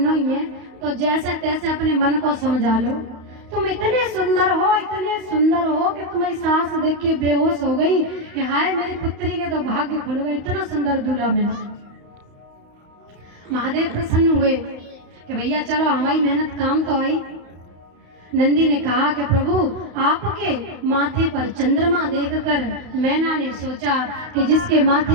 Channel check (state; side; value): late; left; 32 ms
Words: ही है तो जैसे तैसे अपने मन को समझा लो। तुम इतने सुंदर हो कि तुम्हारी सास देख के बेहोश हो गई कि हाय मेरी पुत्री के तो भाग्य खुल गए, इतना सुंदर दूल्हा मिला। महादेव प्रसन्न हुए कि भैया चलो हमारी मेहनत काम तो आई। नंदी ने कहा कि प्रभु आपके माथे पर चंद्रमा देखकर मैना ने सोचा कि जिसके